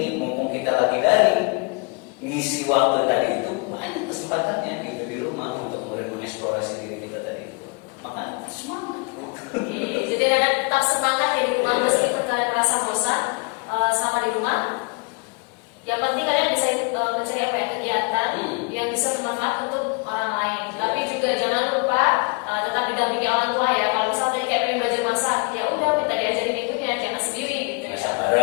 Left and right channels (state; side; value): quieter; right; 35.1 dB